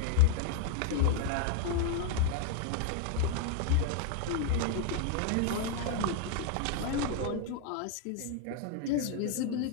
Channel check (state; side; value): different; both; correlation 0.00